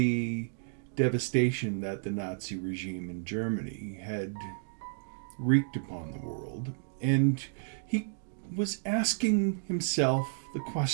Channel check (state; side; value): silent; left; digital silence